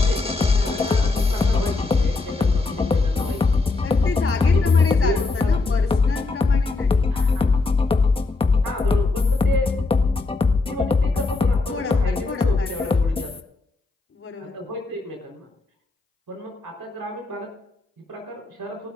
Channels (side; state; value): right; quieter; 3.6 dB